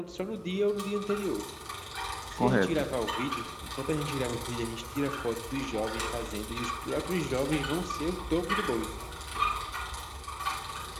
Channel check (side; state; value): both; identical; correlation 1.00